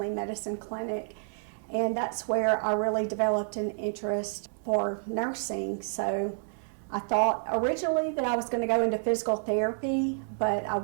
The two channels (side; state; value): left; silent; digital silence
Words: medicine clinic, and that's where I really developed an interest for nursing. So I thought originally that I was going to go into physical therapy, but I